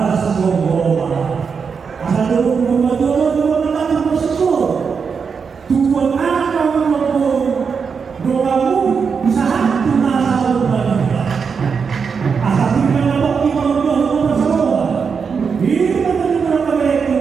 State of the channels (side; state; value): left; quieter; 5.9 dB